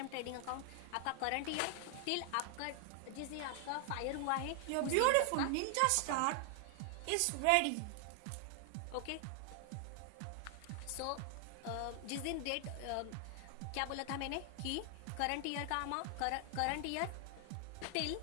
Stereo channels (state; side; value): different; both; correlation 0.00